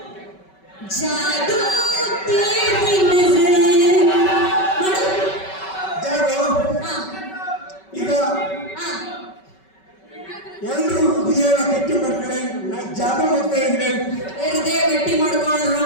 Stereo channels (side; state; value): right; late; 5.3 ms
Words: ಜಾದು ತೇರಿ ನಜರ್ ಮಾಡು. ಜಾದು. ಹಾ ಈಗ ಹಾ ಎಲ್ರು ಹೃದಯನ ಗಟ್ಟಿ ಮಾಡ್ಕೊಳ್ಳಿ. ನಾನು ಜಾದು ಮಾಡ್ತಾ ಇದ್ರೆ ಹೃದಯ ಗಟ್ಟಿ